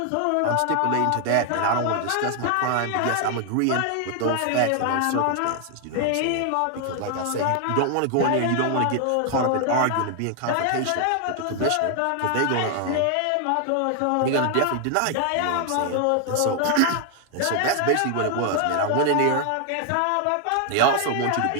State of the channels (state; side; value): different; both; correlation 0.00